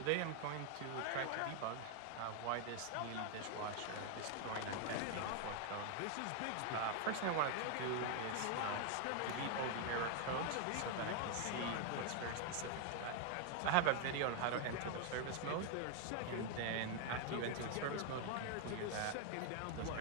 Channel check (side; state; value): both; different; correlation 0.01